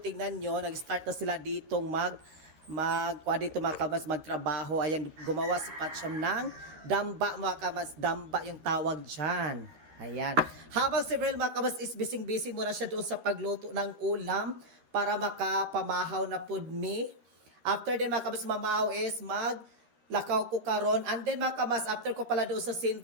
nyo, nag-start na sila ditong dito mga kabas, magtrabaho. Ayan, gumawa si Patcham ng damba mga kabas, damba yung tawag dyan. Ayan. Habang si Verhel mga kabas is busy muna siya doon sa pagluto ng ulam para makapamahaw na pud me. After din mga kabas mamahaw is maglakaw ko karon. And then mga kabas, after ko pala doon sa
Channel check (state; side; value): late; left; 13 ms